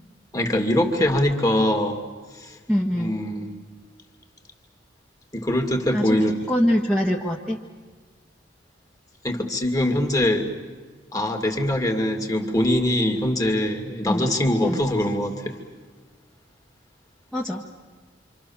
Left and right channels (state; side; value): normal; both; correlation 0.76